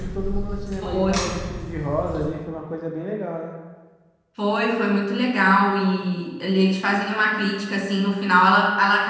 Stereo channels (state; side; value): identical; both; correlation 1.00